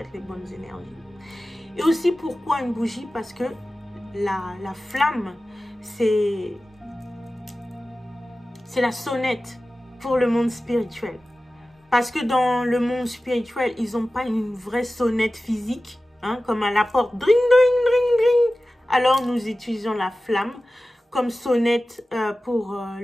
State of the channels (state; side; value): normal; both; correlation 0.96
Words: les bonnes énergies. Et aussi, pourquoi une bougie? Parce que la flamme, c'est la sonnette pour le monde spirituel. Parce que dans le monde spirituel, ils n'ont pas une vraie sonnette physique, hein, comme à la porte, dring, dring, dring, dring. Alors nous utilisons la flamme comme sonnette pour